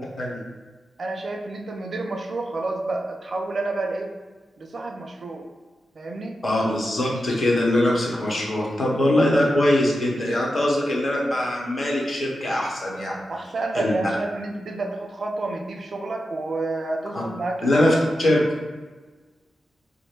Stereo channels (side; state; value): both; normal; correlation 0.89